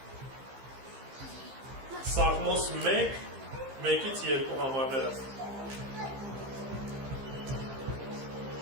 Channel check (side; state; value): left; late; 15 ms